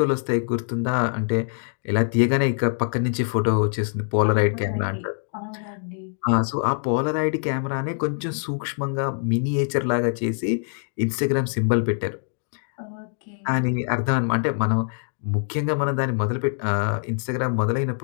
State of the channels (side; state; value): right; silent; digital silence